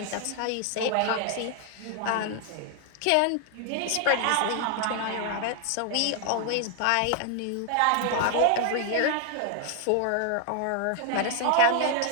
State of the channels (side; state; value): both; different; correlation 0.00